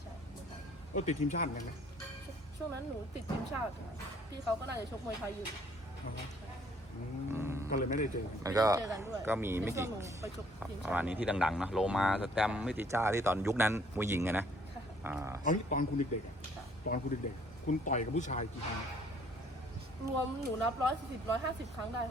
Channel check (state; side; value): normal; both; correlation 0.61